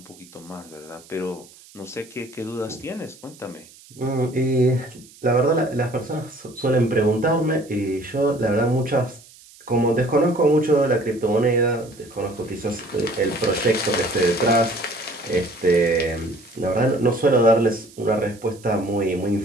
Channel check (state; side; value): noise; right; hiss, 23 dB below the sound